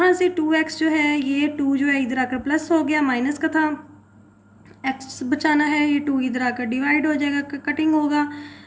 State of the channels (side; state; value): both; identical; correlation 1.00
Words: से 2x जो है, ये 2 जो है इधर आकर प्लस हो गया, माइनस का था, x बचाना है, ये 2 इधर आकर डिवाइड हो जाएगा, कटिंग होगा